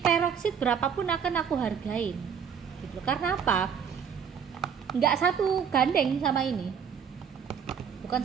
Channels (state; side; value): quieter; left; 7.4 dB